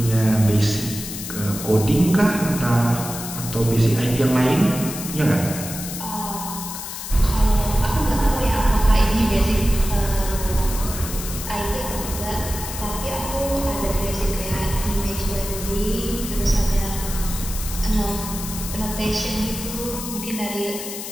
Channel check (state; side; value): noise; left; hiss, 8 dB below the sound